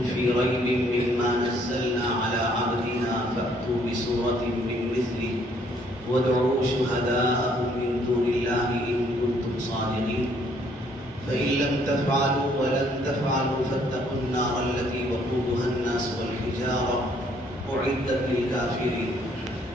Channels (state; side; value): normal; both; correlation 0.65